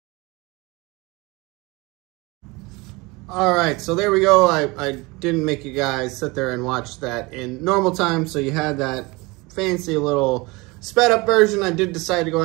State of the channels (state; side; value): quieter; left; 24.5 dB